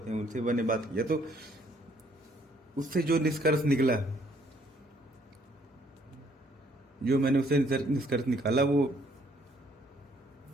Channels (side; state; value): both; normal; correlation 0.65